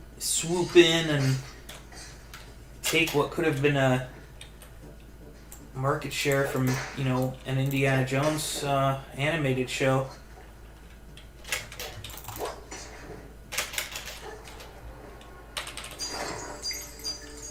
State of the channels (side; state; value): both; identical; correlation 1.00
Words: swoop in and take what could have been a market share from an Indiana Jones animated show.